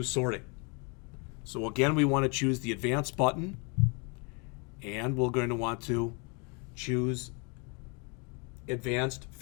sorting. So again, we want to choose the advanced button, and we're going to want to choose advanced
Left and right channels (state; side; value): quieter; right; 33.4 dB